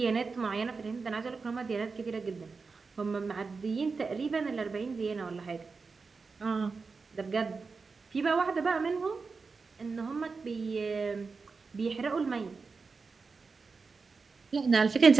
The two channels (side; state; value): left; quieter; 4.6 dB